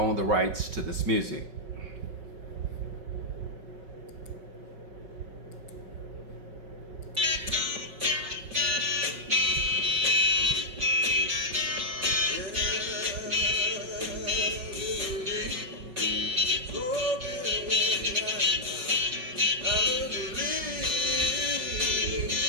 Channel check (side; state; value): left; late; 5.3 ms